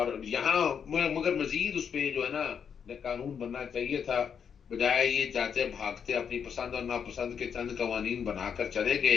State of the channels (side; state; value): right; quieter; 7.2 dB